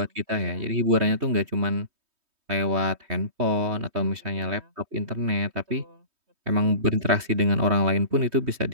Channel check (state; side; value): late; left; 3.2 ms